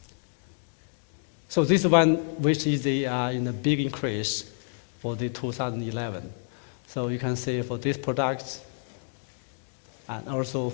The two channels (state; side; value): silent; right; 59 dB below the other